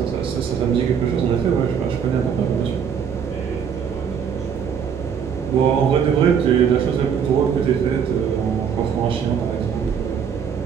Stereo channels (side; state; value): left; quieter; 7.4 dB